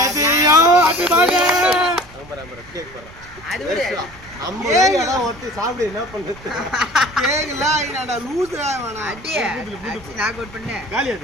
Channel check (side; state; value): right; noise; rumble, 21 dB below the sound